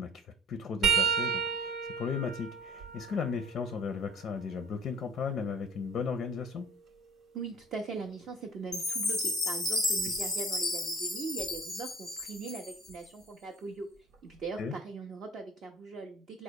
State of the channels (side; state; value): both; normal; correlation 0.46